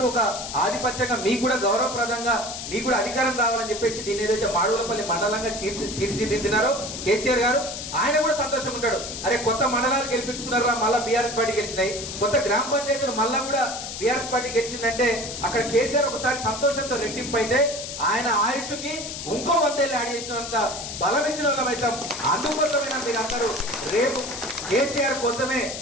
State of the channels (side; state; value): left; noise; hiss, 8 dB below the sound